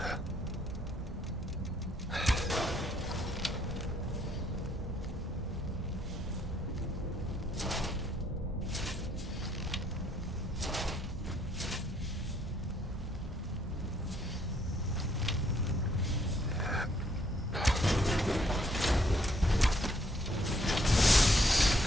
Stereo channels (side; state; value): both; normal; correlation 0.69